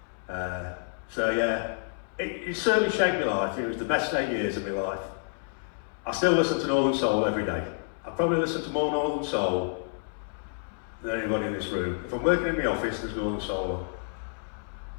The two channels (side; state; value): right; silent; 59 dB below the other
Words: So yeah, it certainly shaped my life. It was the best 8 years of my life. I still listen to Northern Soul every day. I probably listen to more Northern Soul than anyone in this room. If I'm working in my office, there's Northern Soul.